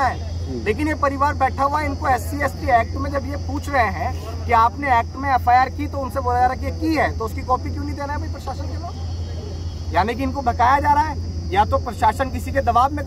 लेकिन ये परिवार बैठा हुआ है, इनको SC/ST एक्ट में जब ये पूछ रहे हैं कि आपने एक्ट में FIR की तो उनसे बोला जा रहा है कि की है तो उसकी कॉपी क्यों नहीं देना है भाई प्रशासन के लोग? यानी कि इनको बकाया जा रहा है या तो प्रशासन किसी के दबाव में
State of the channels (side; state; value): both; identical; correlation 1.00